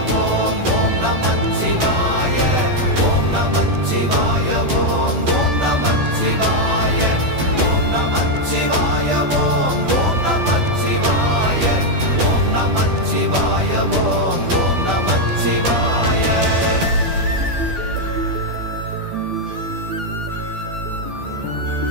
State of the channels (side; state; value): left; late; 12 ms